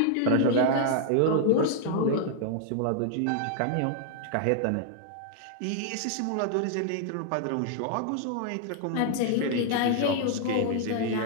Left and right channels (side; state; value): both; different; correlation 0.00